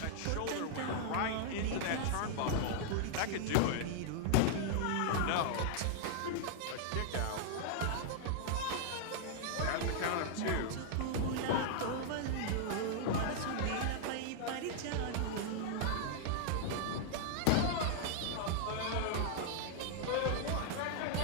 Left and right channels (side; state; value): both; different; correlation -0.01